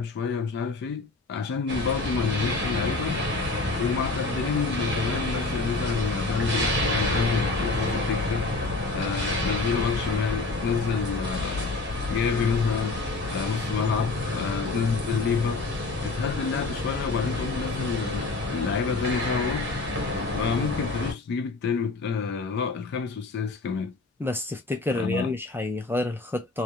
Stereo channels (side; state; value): right; quieter; 3.6 dB